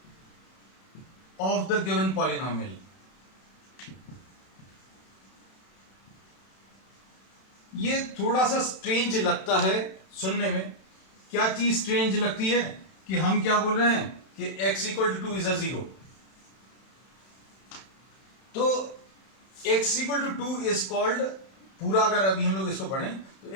of the given polynomial. ये थोड़ा सा स्ट्रेंज लगता है सुनने में. क्या चीज स्ट्रेंज लगती है कि हम क्या बोल रहे हैं कि x equal to 2 is a zero. तो x equal to 2 is called, पूरा अगर अभी हम लोग इसको पढ़ें तो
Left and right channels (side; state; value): right; late; 31 ms